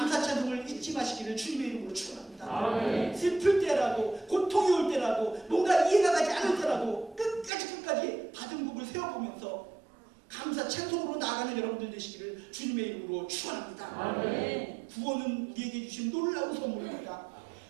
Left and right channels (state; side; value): drops out; left; at 7.5 s